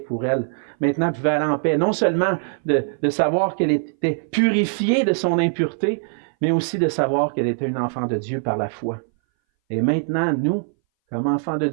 pour elle. Maintenant, elle pouvait aller en paix, non seulement de savoir qu'elle était purifiée de son impureté, mais aussi de savoir qu'elle était une enfant de Dieu par la foi. Et maintenant, nous, comme enfants de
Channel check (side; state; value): left; silent; 61 dB below the other